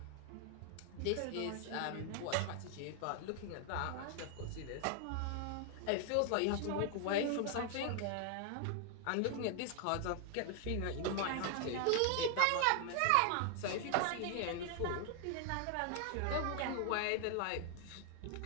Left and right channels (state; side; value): different; both; correlation 0.00